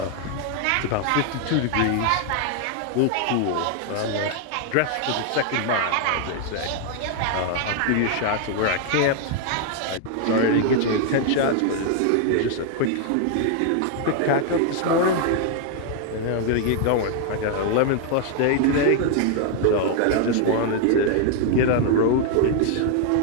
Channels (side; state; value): both; different; correlation 0.00